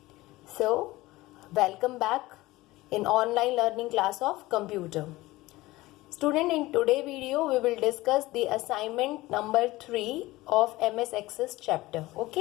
So, welcome back in online learning class of computer. Student, in today's video we will discuss the assignment number 3 of MS Access chapter.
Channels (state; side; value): quieter; right; 19.0 dB